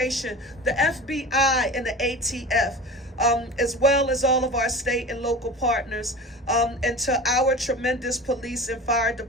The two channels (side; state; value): both; normal; correlation 0.34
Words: the FBI, and the ATF, as well as all of our state and local partners, and to our tremendous police and fire